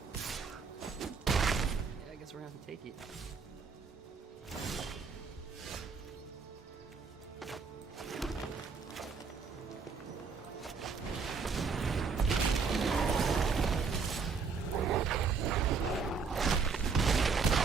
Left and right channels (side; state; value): left; quieter; 5.2 dB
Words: We're gonna have to take it.